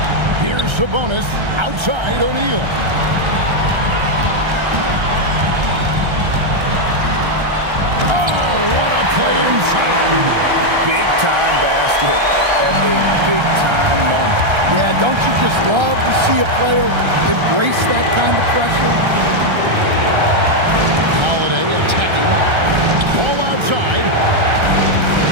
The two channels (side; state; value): left; late; 1.3 ms